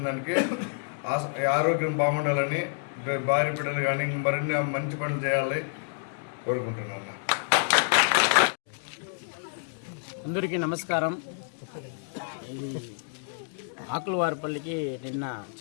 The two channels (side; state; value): right; silent; digital silence